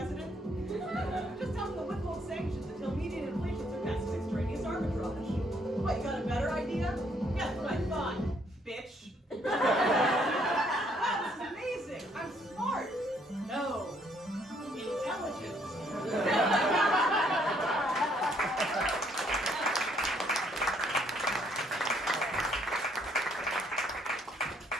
Just tell them to withhold sanctions until median inflation surpasses extraneous arbitrage. What, you got a better idea? Yeah, that's what I thought, bitch.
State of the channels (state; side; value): normal; both; correlation 0.68